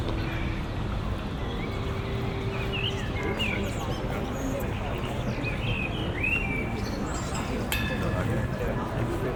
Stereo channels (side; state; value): both; identical; correlation 1.00